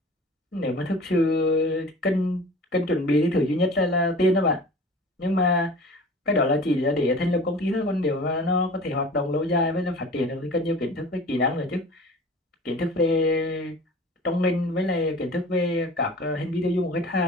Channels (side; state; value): both; normal; correlation 0.41